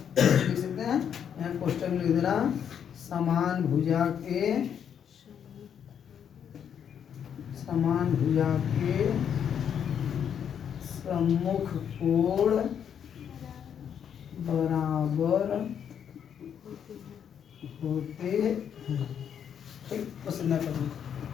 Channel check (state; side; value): quieter; right; 8.4 dB